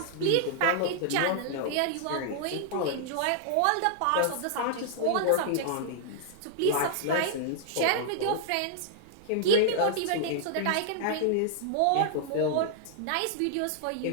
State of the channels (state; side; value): different; both; correlation -0.01